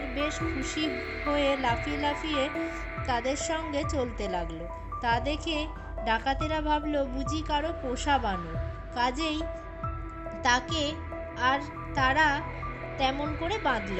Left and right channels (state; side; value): identical; both; correlation 1.00